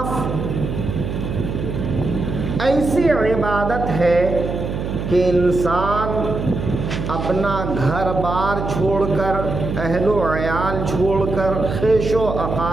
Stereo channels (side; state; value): right; noise; hum, 4 dB below the sound